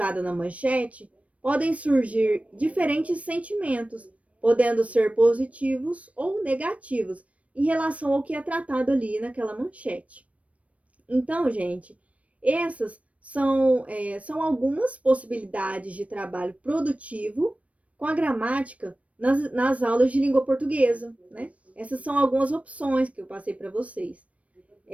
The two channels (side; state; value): left; late; 0.065 ms